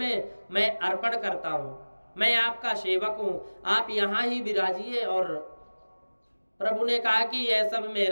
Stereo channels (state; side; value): inverted; both; correlation -1.00